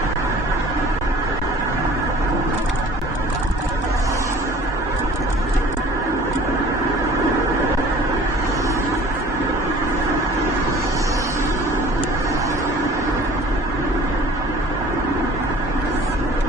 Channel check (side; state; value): both; normal; correlation 0.48